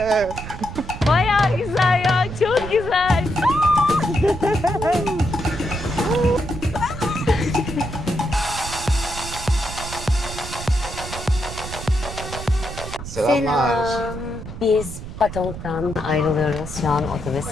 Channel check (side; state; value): right; noise; rumble, 10 dB below the sound